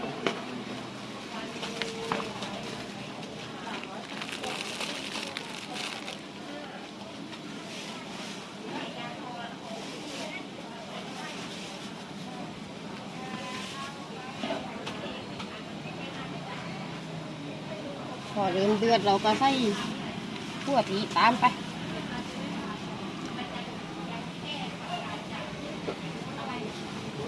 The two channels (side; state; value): both; identical; correlation 1.00